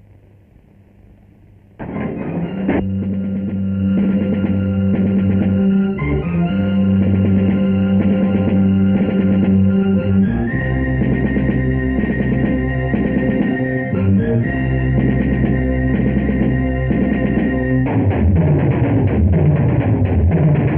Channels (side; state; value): both; identical; correlation 1.00